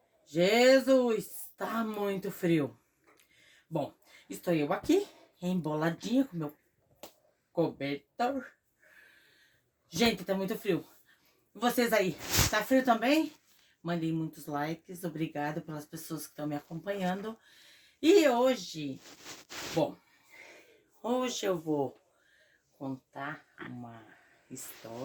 Jesus, tá muito frio. Bom, estou eu aqui, emboladinha com meu cobertor. Gente, tá muito frio. Vocês aí, tá frio também? Mandei muitos likes, obrigado pelas pessoas que estão me acompanhando. E hoje eu vou contar uma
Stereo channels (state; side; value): identical; both; correlation 1.00